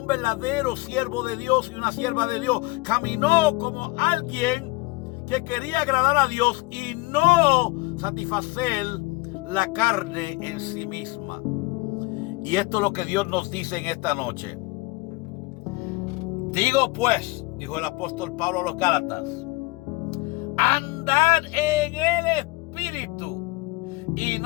verdadero siervo de Dios y una sierva de Dios, caminó como alguien que quería agradar a Dios y no satisfacer la carne en sí misma. Y esto es lo que Dios nos dice en esta noche. Digo pues, dijo el apóstol Pablo a los Gálatas, andad en el Espíritu y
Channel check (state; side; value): quieter; right; 23.4 dB